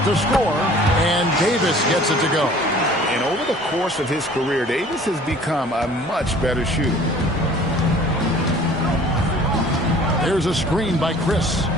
to score, and Davis gets it to go. And over the course of his career, Davis has become a much better shooter. There's a screen by Chris.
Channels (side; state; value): both; normal; correlation 0.50